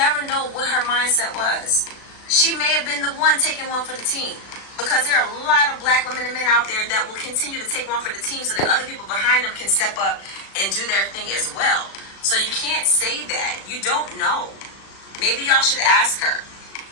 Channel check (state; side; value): late; right; 36 ms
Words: know what her mindset was. She may have been the one taking one for the team, because there are a lot of black women and men out there that will continue to take one for the team so that other people behind them can step up and do their thing as well. So you can't say that. You don't know. Maybe y'all should ask her,